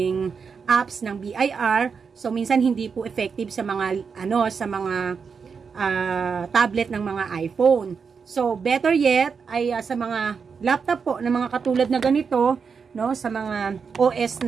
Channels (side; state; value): left; quieter; 5.8 dB